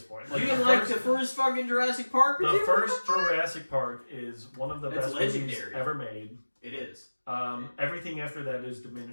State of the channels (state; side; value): inverted; both; correlation -1.00